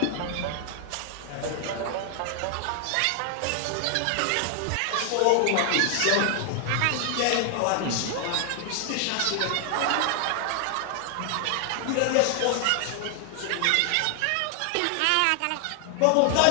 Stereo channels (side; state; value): both; different; correlation 0.00